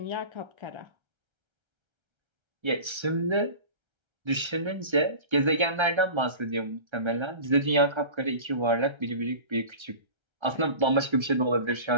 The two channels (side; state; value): left; late; 1.3 ms